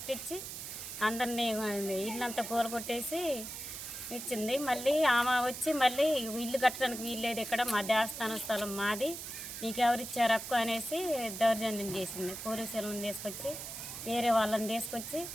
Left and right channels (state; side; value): noise; right; hiss, 8 dB below the sound